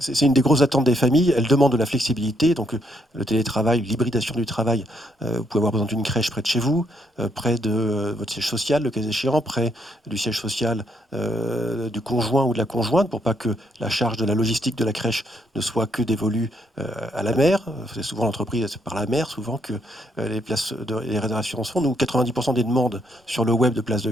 une des grosses attentes des familles. Elles demandent de la flexibilité, donc le télétravail, l'hybridation du travail. Vous pouvez avoir besoin d'une crèche près de chez vous, près de votre siège social, le cas échéant, près du siège social du conjoint ou de la conjointe, pour pas que la charge de la logistique de la crèche ne soit que dévolue à la mère. C'est souvent l'entreprise, c'est par la mère, souvent que les réservations se font. Nous, 90% des demandes sur le web de places de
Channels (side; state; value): both; normal; correlation 0.74